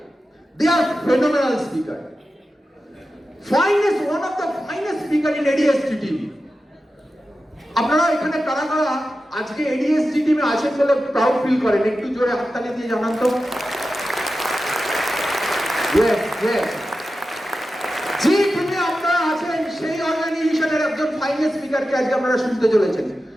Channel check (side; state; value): both; normal; correlation 0.92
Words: they are phenomenal speaker, finest, one of the finest speaker in ADST TV. আপনারা এখানে কারা কারা আজকে এডিএসটি টিমে আছেন বলে প্রাউড ফিল করেন? একটু জোরে হাততালি দিয়ে জানান তো। ইয়েস ইয়েস, যে টিমে আপনারা আছেন সেই অর্গানাইজেশনের একজন ফাইনেস্ট স্পিকারকে আজকে আপনারা শুনতে চলেছেন।